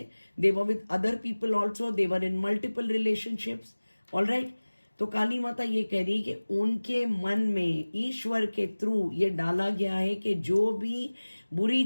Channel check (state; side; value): inverted; both; correlation -1.00